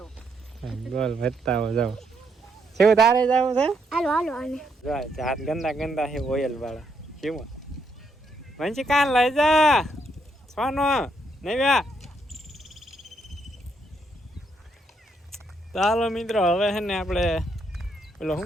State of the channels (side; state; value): both; normal; correlation 0.76